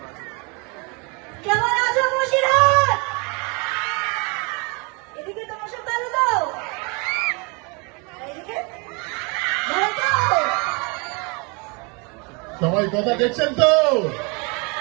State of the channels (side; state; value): left; quieter; 31.2 dB